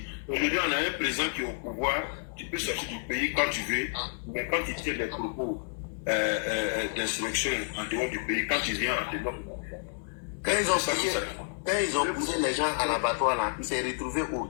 Aujourd'hui, on a un président qui est au pouvoir, tu peux sortir du pays quand tu veux, mais quand tu tiens des propos d'insurrection en dehors du pays, quand tu viens en dehors, Quand ils ont poussé les gens à l'abattoir là, il s'est retrouvé au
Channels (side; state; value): right; silent; digital silence